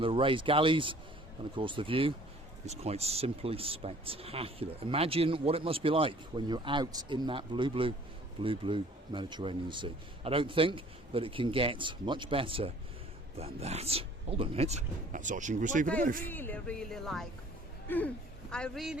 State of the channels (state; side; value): normal; both; correlation 0.53